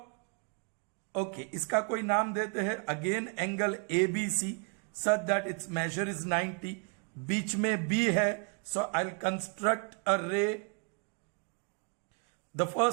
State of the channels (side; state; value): left; quieter; 37.0 dB